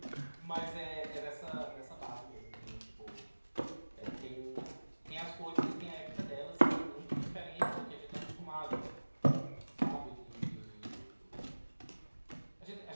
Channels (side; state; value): both; inverted; correlation -1.00